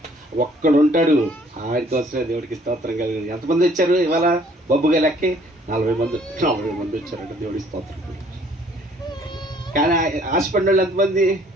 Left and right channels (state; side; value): normal; both; correlation 0.59